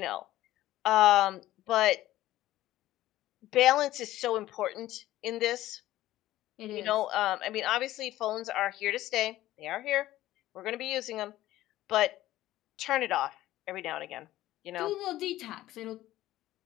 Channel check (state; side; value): quieter; right; 15.1 dB